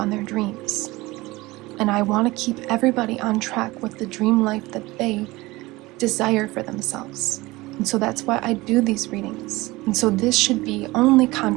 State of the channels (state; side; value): quieter; left; 20.7 dB